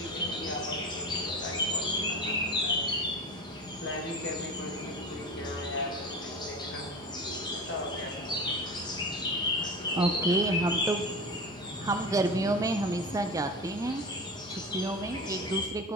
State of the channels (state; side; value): normal; both; correlation 0.30